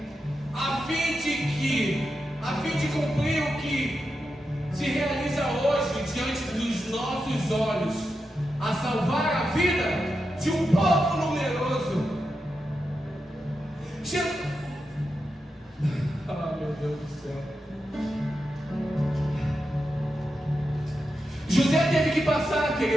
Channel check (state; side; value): normal; both; correlation 0.88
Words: a fim de cumprir o que se realiza hoje diante dos nossos olhos, a salvar a vida de um povo numeroso. Meu Deus do céu. José teve que passar,